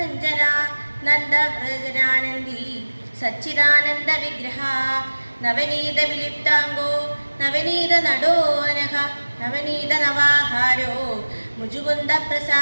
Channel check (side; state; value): both; inverted; correlation -1.00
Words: നന്ദവ്രജനാനന്ദി സച്ചിദാനന്ദ വിഗ്രഹ. നവനീത വിലിപ്താംഗോ നവനീത നടോനഘ നവനീത നവാഹാരോ മുജുകുന്ദ